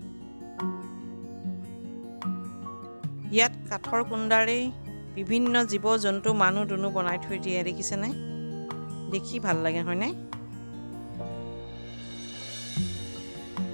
ইয়াত কাঠৰ কুণ্ডাৰে বিভিন্ন জীৱ জন্তু মানুহ দুনু বনাই থৈ দিয়ে দেখিছেনে দেখি ভাল লাগে হয়নে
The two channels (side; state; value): both; inverted; correlation -1.00